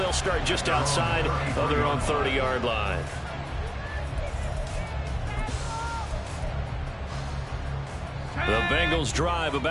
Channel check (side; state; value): both; identical; correlation 1.00